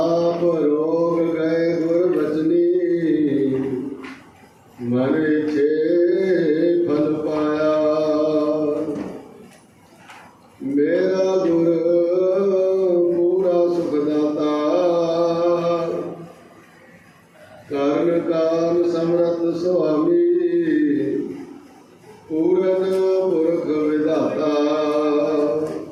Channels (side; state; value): both; identical; correlation 1.00